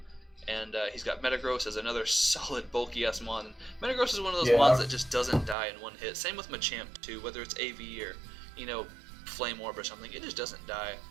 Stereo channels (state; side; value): drops out; left; at 5.6 s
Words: And he's got Metagross as another solid bulky ass Mon. Metagross is one of those Mons that just doesn't die in one hit. Same with Machamp too, whether it's AV or Flame Orb or something, it just doesn't die.